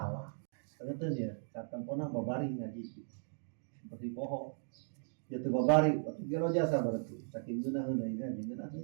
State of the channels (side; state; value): left; silent; digital silence